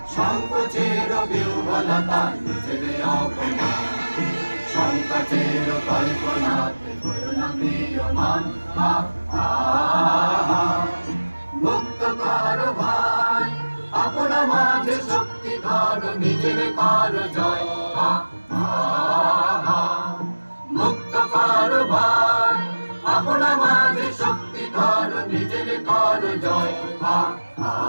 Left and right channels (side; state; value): both; inverted; correlation -1.00